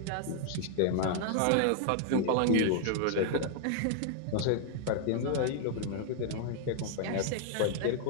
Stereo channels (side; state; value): both; different; correlation 0.00